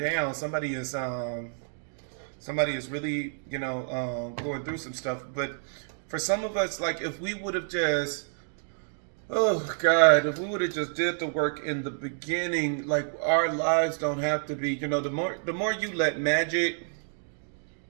Somebody is really, going through some stuff. But for some of us, like, if we would have just, if we would have just did the work in the beginning, like, our lives don't have to be, the more you let magic,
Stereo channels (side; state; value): left; silent; digital silence